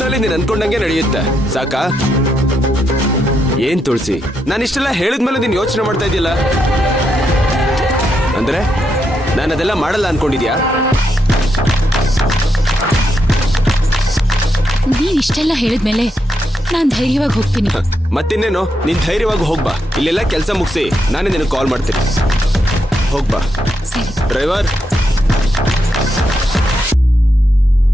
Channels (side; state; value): both; normal; correlation 0.81